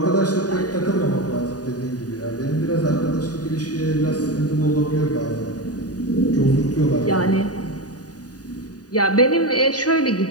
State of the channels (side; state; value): right; late; 0.68 ms